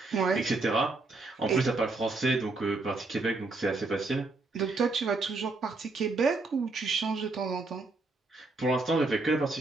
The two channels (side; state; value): left; quieter; 3.4 dB